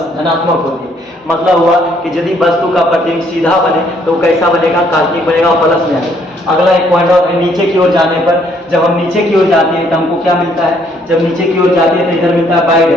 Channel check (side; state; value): both; normal; correlation 0.66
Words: धनात्मक होती है। मतलब हुआ कि यदि वस्तु का प्रतिबिंब सीधा बने तो कैसा बनेगा, काल्पनिक बनेगा और प्लस में आएगा। अगला एक पॉइंट और है, नीचे की ओर जाने पर, जब हम नीचे की ओर जाते हैं तो हमको क्या मिलता है, जब नीचे की ओर जाते हैं तो इधर मिलता है बाई